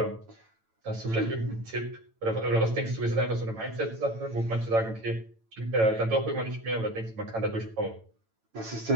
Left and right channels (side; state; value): left; late; 9.0 ms